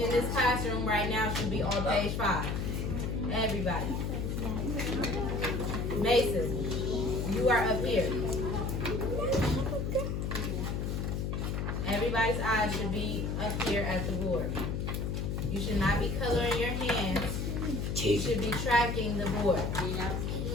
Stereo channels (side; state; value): left; noise; hum, 1 dB below the sound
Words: in this classroom right now should be on page 5. Everybody. Mason, you are up here. Everybody's eyes should be up here at the board. You should not be coloring your hands. You should be tracking the board.